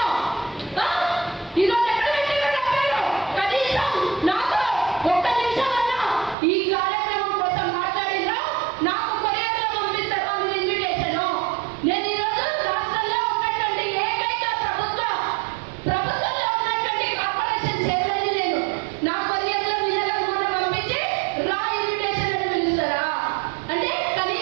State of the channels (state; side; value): drops out; left; at 6.4 s